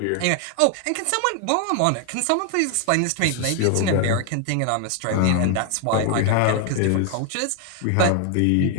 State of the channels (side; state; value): both; different; correlation 0.00